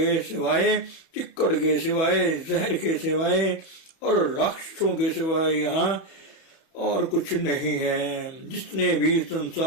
सिवाय, चिक्कड़ के सिवाय, जहर के सिवाय और राक्षसों के सिवाय यहाँ और कुछ नहीं है। जिसने भी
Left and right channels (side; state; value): right; late; 31 ms